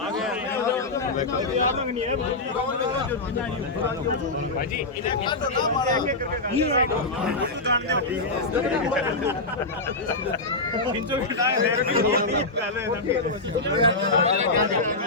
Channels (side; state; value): right; quieter; 3.1 dB